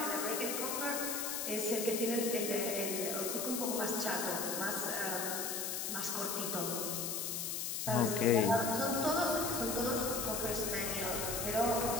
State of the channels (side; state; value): left; noise; hiss, 2 dB below the sound